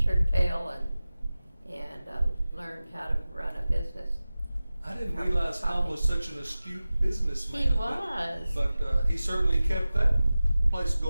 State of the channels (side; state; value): both; inverted; correlation -0.96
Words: tail and learned how to run a business. I didn't realize Tom was such an astute businessman. He was. But he certainly kept that place